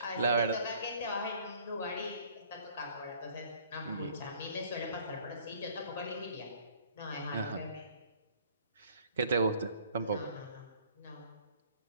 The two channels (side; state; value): both; inverted; correlation -0.55